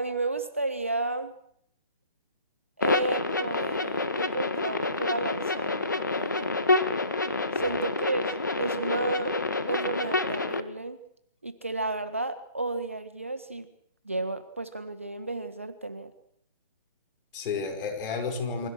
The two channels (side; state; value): both; inverted; correlation -0.51